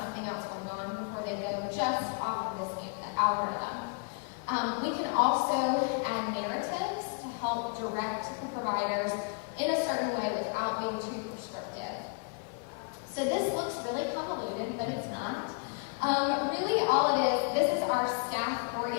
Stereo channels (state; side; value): quieter; right; 36.0 dB